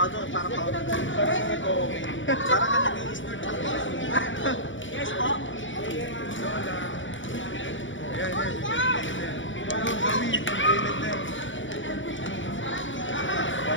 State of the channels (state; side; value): late; right; 0.56 ms